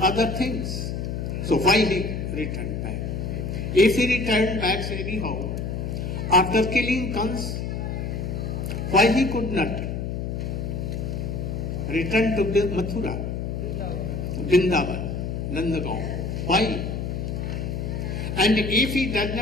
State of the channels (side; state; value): left; noise; hum, 3 dB below the sound